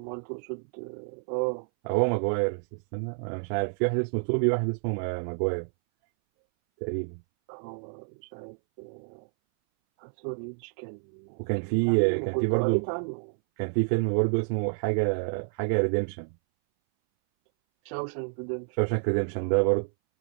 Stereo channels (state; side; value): silent; left; 59 dB below the other